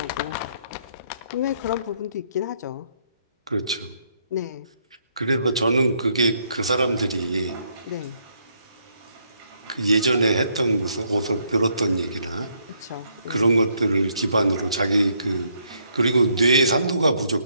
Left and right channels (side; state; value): both; inverted; correlation -0.72